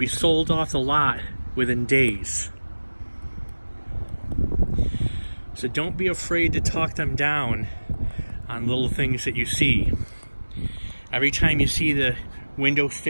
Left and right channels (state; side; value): inverted; both; correlation -1.00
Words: sold off the lot within days. So don't be afraid to talk them down on little things that you see. Every time you see the window